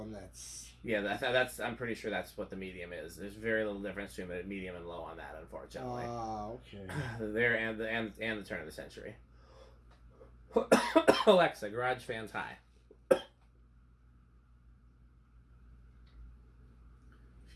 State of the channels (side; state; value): both; identical; correlation 1.00